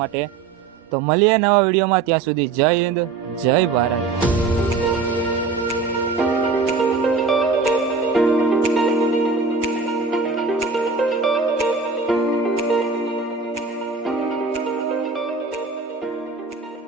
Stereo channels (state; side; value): quieter; left; 4.4 dB